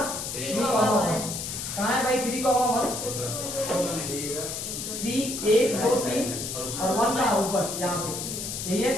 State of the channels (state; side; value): noise; left; hiss, 5 dB below the sound